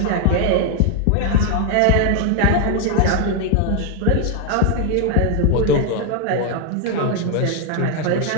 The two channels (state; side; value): different; both; correlation 0.01